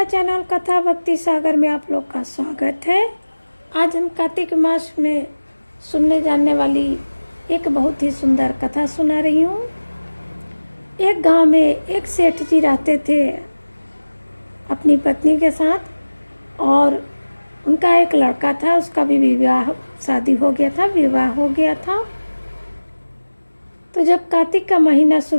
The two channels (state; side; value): inverted; both; correlation -1.00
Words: चैनल कथा भक्ति सागर में आप लोग का स्वागत है। आज हम कार्तिक मास में सुनने जाने वाली एक बहुत ही सुंदर कथा सुना रही हूँ। एक गांव में एक सेठ जी रहते थे अपनी पत्नी के साथ, और उनका एक लड़का था। उसका भी शादी हो गया था, विवाह हो गया था। तो जब कार्तिक का महीना